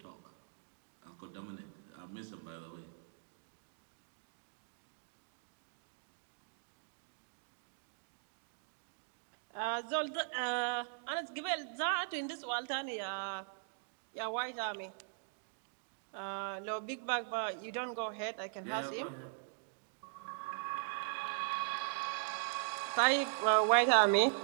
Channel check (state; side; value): silent; left; digital silence